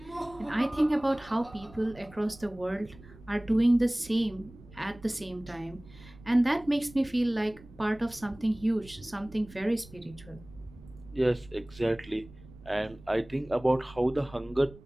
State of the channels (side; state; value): right; noise; rumble, 21 dB below the sound